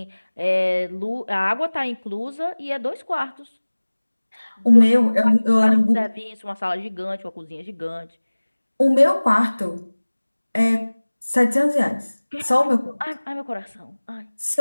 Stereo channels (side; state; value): both; inverted; correlation -1.00